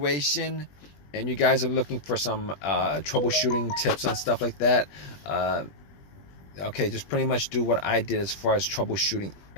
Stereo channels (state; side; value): late; right; 21 ms